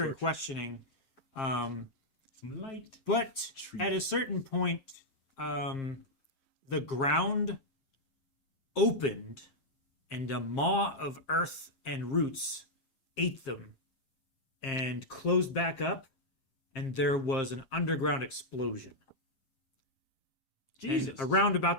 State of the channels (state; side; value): late; right; 7.4 ms